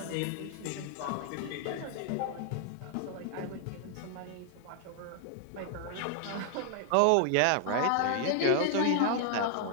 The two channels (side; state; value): both; different; correlation 0.00